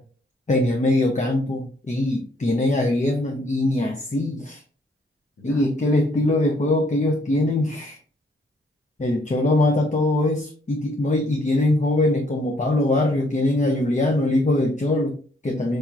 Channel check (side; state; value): both; normal; correlation 0.67